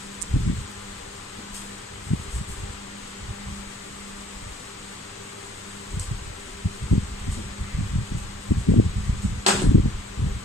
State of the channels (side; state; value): both; normal; correlation 0.58